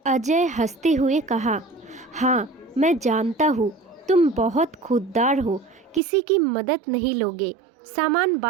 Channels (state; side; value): drops out; left; at 6.0 s